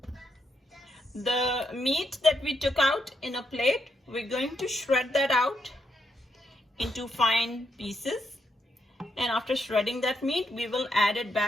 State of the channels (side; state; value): both; normal; correlation 0.78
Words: The meat that we took out in a plate, we're going to shred that out into fine pieces. And after shredding that meat, we will add it